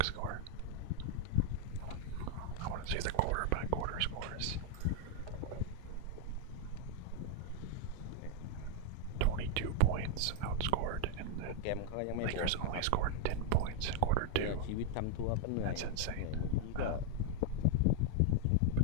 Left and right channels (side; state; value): both; different; correlation 0.01